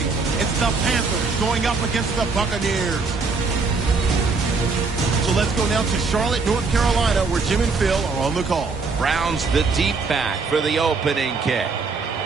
It's the Panthers going up against the Buccaneers. So let's go now to Charlotte, North Carolina, where Jim and Phil are on the call. Browns the deep back for the opening kick.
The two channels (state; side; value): quieter; left; 4.4 dB